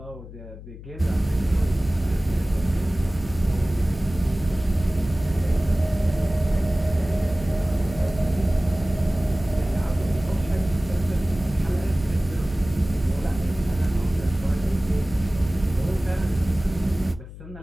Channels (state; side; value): noise; left; hum, 15 dB below the sound